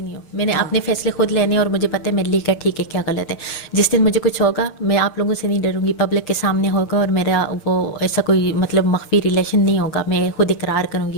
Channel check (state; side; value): late; right; 6.7 ms